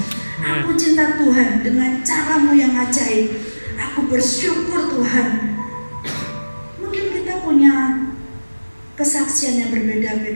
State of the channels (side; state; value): both; inverted; correlation -1.00